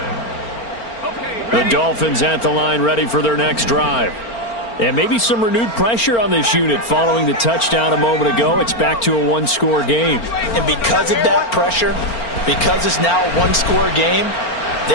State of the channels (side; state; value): right; late; 4.4 ms